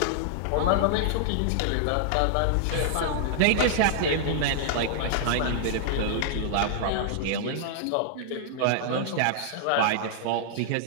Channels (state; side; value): different; both; correlation -0.01